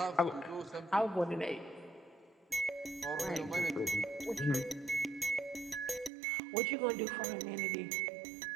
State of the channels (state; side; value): drops out; left; at 6.1 s